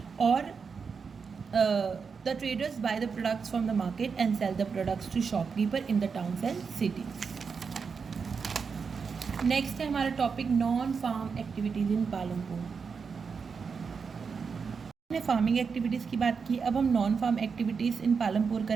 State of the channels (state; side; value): quieter; left; 5.6 dB